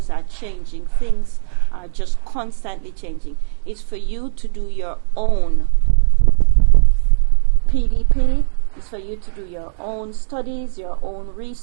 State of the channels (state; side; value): silent; left; digital silence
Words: are changing, things are just constantly changing. It's for you to do your own PDP, it's for you to do your own studies, your own